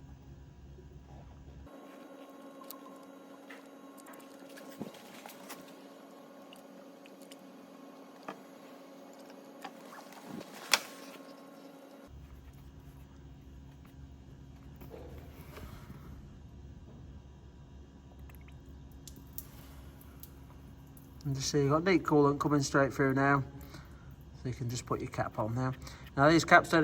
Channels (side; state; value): both; identical; correlation 1.00